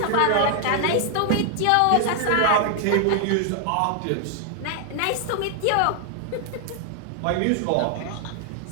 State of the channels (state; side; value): different; both; correlation 0.00